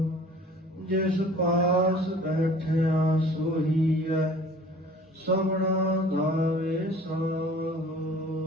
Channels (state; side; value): normal; both; correlation 0.48